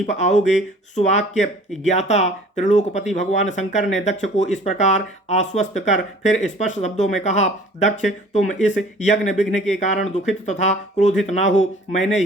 आओगे। सुवाक्य ज्ञाता त्रिलोकपति भगवान शंकर ने दक्ष को इस प्रकार आश्वस्त कर फिर स्पष्ट शब्दों में कहा, दक्ष, तुम इस यज्ञ विघ्न के कारण दुखित तथा क्रोधित ना हो। मैंने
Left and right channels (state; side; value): normal; both; correlation 0.50